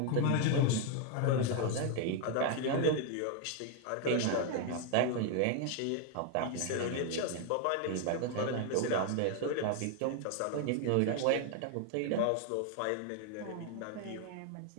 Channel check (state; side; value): different; both; correlation 0.01